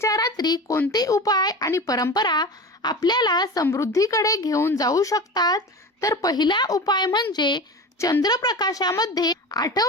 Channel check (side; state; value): both; normal; correlation 0.30